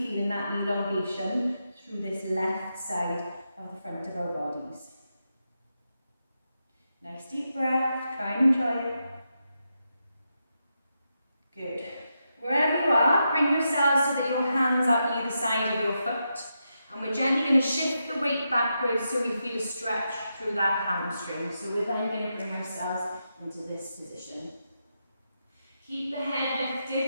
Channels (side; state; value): both; inverted; correlation -0.86